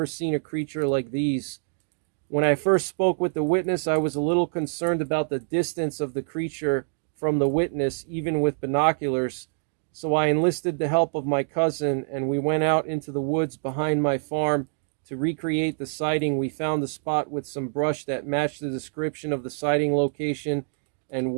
seen a creature like these. When I first spoke with the witness, I was a little concerned about the distance of the creature from the witness, even with binoculars, so I enlisted the help of my cousin, and we went out into the woods behind my farm to recreate the sighting. We found a spot with some brush that matched the description of the sighting location and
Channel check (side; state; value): left; silent; digital silence